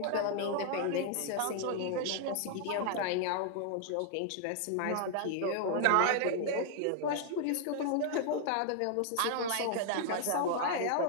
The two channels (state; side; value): different; both; correlation -0.01